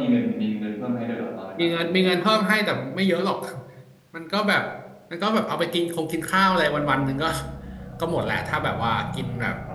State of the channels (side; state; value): both; identical; correlation 1.00